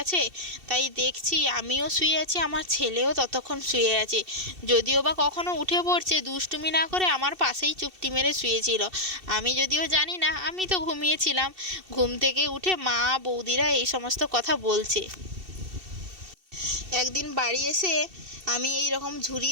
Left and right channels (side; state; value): left; late; 2.7 ms